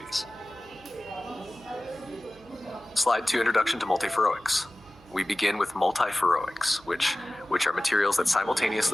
Slide 2, Introduction to Multiferroics. We begin with multiferroics, which are materials that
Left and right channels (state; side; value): noise; right; hum, 26 dB below the sound